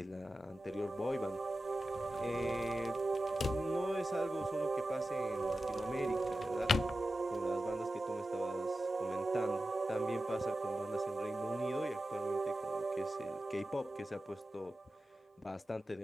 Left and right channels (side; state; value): both; normal; correlation 0.93